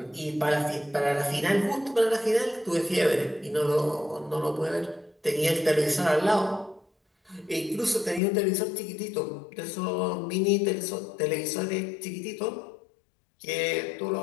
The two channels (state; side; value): drops out; right; at 8.2 s